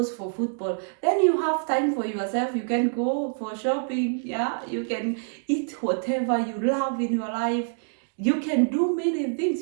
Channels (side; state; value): left; silent; digital silence